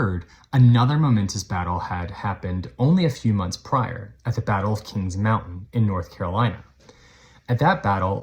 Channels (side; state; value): both; identical; correlation 1.00